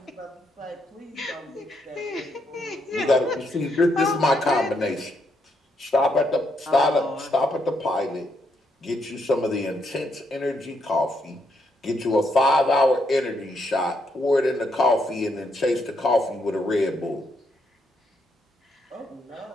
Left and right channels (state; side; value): normal; both; correlation 0.77